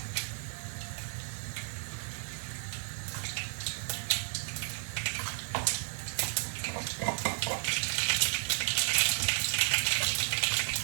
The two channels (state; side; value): silent; left; 56 dB below the other